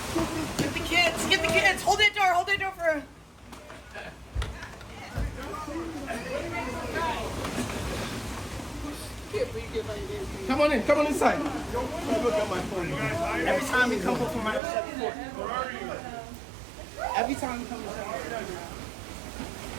Get the kids! Hold that door for... come on inside. Every time we come home from my every time we come to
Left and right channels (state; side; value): drops out; left; at 14.6 s